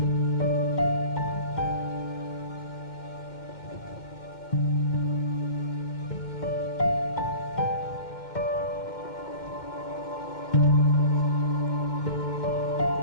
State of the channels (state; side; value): late; right; 2.1 ms